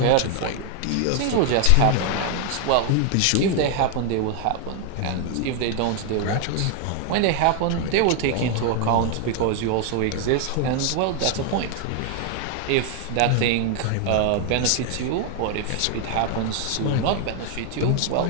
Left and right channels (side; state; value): both; different; correlation 0.00